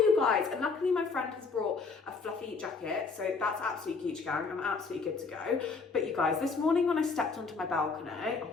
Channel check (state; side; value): quieter; right; 4.6 dB